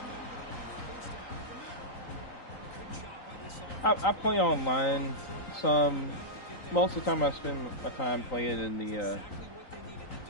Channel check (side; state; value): right; late; 3.9 ms